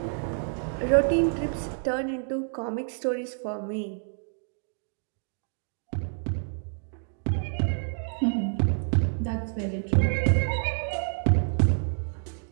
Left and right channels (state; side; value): silent; left; 59 dB below the other